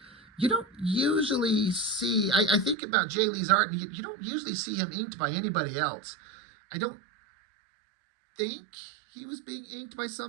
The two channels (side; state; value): left; drops out; at 2.8 s